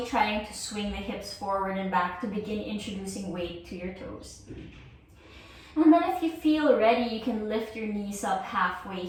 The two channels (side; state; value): both; identical; correlation 1.00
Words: trying to swing the hips forward and back to begin introducing weight to your toes. And then if you feel ready, you can lift your knees up halfway